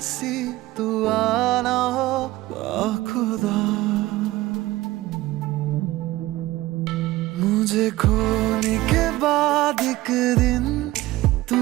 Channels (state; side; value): quieter; left; 17.7 dB